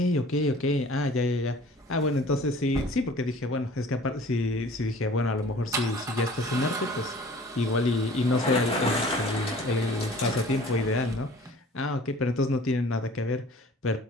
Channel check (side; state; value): both; normal; correlation 0.48